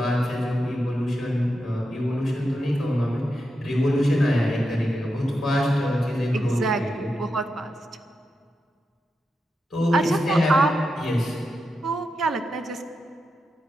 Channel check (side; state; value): both; normal; correlation 0.87